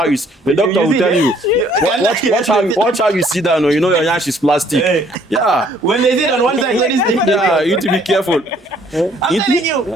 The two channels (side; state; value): both; normal; correlation 0.62